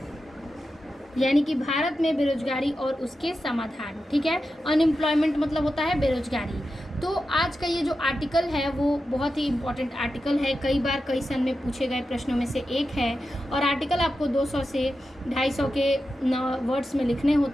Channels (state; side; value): normal; both; correlation 0.90